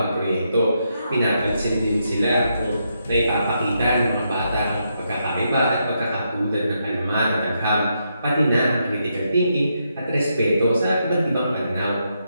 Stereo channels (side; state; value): both; inverted; correlation -0.80